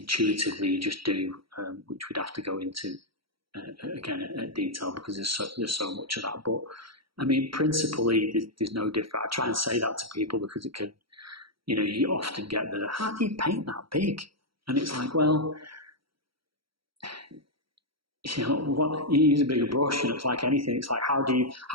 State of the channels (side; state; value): left; late; 0.74 ms